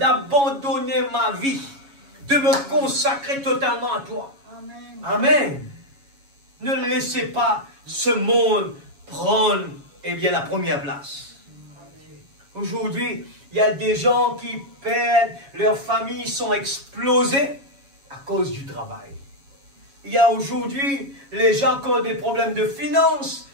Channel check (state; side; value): late; left; 7.2 ms